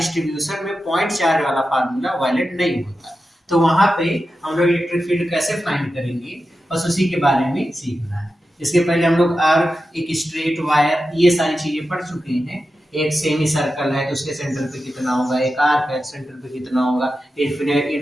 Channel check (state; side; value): normal; both; correlation 0.91